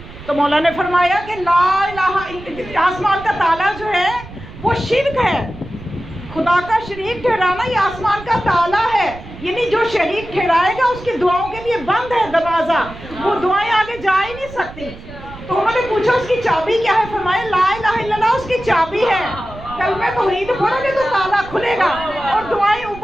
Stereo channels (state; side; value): noise; right; rumble, 16 dB below the sound